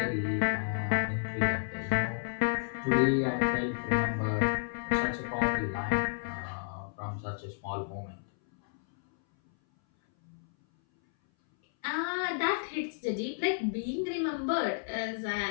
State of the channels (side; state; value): right; silent; 57 dB below the other